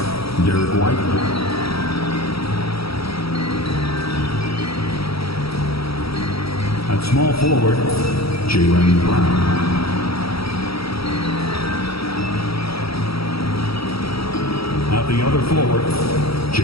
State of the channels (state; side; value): late; right; 0.76 ms